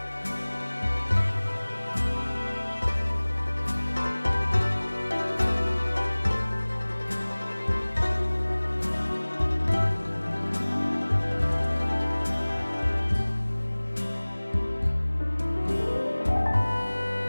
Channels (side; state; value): both; inverted; correlation -1.00